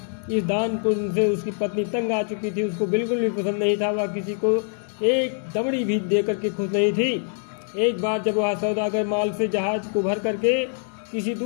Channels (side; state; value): right; silent; 62 dB below the other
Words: इस दान पुण्य से उसकी पत्नी तंग आ चुकी थी। उसको बिल्कुल भी पसंद नहीं था। वह किसी को एक दमड़ी भी दे करके खुश नहीं थी। एक बार जब वह सौदागर माल से जहाज को भर करके किसी